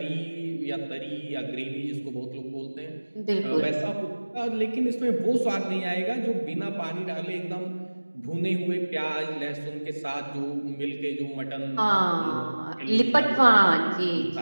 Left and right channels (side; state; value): both; inverted; correlation -1.00